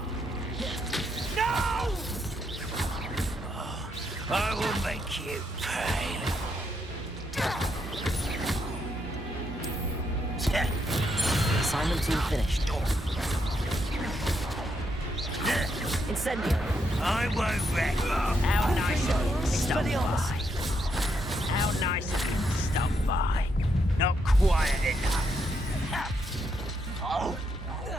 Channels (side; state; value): both; normal; correlation 0.78